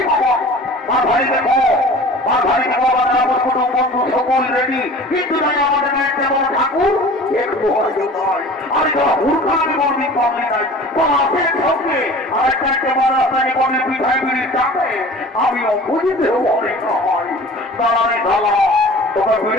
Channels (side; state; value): both; normal; correlation 0.42